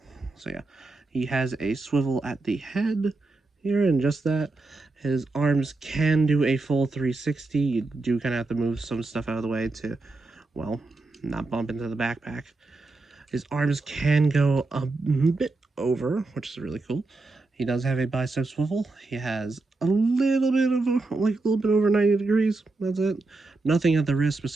So yeah, he has a swivel at the head here and just that. His arms can do a full 360. You do kind of have to move some stuff out of the way to, well, not bump into the backpack. His arms can go a bit over, which is really cool. He does have a bicep swivel. He has a little bit of like a little bit over 90 degrees. That's it. Nothing at the wrist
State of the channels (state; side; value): quieter; left; 3.4 dB